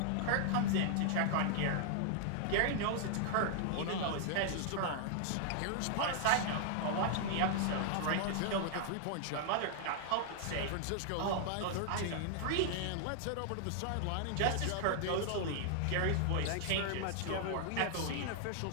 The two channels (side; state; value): both; different; correlation 0.00